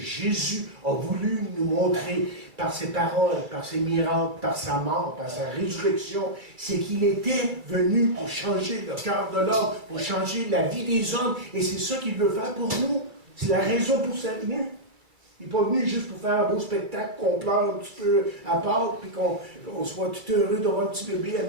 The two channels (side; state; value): left; late; 2.3 ms